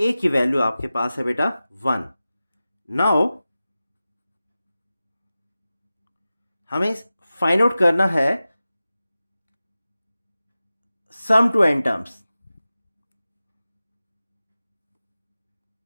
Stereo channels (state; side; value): inverted; both; correlation -0.95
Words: की value आपके पास है बेटा 1। नाउ हमें फाइंड आउट करना है sum to n terms.